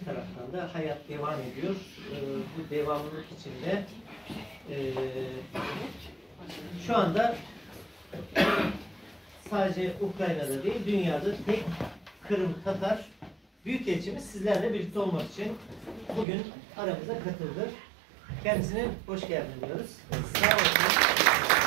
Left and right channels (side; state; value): left; drops out; at 16.2 s